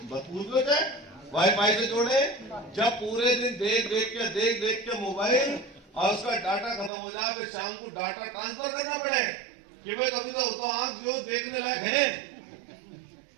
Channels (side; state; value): left; drops out; at 6.9 s